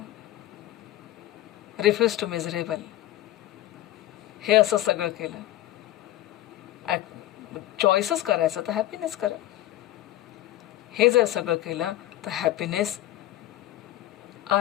refuse to miserable, हे असं सगळं केलं, चॉईसच करायचं तर हॅपीनेस करा. हे जर सगळं केलं तर happiness,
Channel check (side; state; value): right; quieter; 14.8 dB